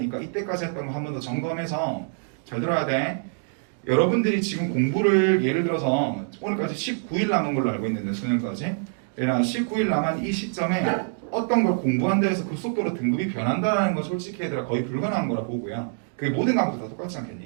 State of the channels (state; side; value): silent; left; digital silence